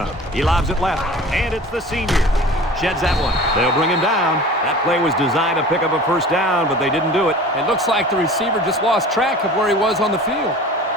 He lobs it left, and it's the senior. Sheds that one. They'll bring him down. That play was designed to pick up a first down, but they didn't do it. It looks like the receiver just lost track of where he was on the field.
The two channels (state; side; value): normal; both; correlation 0.41